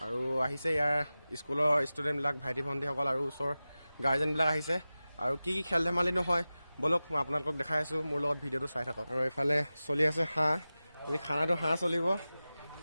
আৰু আহিছে ইয়াৰ স্কুলৰ ষ্টুডেণ্টবিলাক, ভাইটি ভণ্টিসকল আৰু ওচৰৰ গাৰ্জেনবিলাক আহিছে। আৰু কি কি খেল ধেমালি নহয় ব'লক মই আপোনালোকক দেখাই আছোঁ, মোৰ লগত ভিডিঅ'টো চাই থাকক। আৰু এইফালে চলি আছে হাঁহ, আজি খানাটো হাঁহ চলিব,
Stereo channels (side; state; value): both; inverted; correlation -0.96